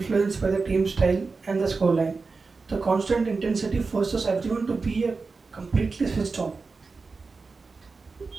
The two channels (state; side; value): quieter; left; 4.3 dB